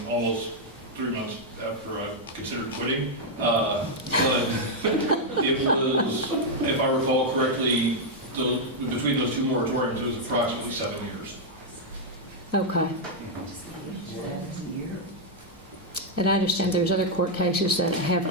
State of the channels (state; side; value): normal; both; correlation -0.02